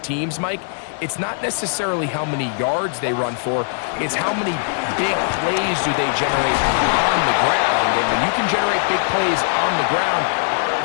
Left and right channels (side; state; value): right; silent; 58 dB below the other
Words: teams, Mike, it's not necessarily how many yards they run for, it's how many big plays do they generate on the ground. And when you can generate big plays on the ground,